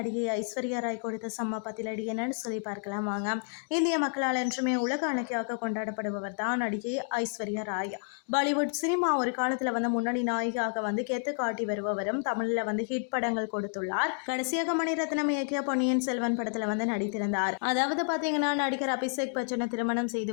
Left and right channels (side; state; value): right; silent; 58 dB below the other